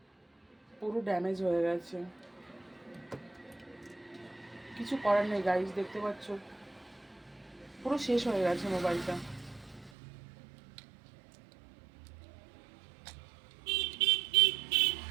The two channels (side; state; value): left; drops out; at 9.9 s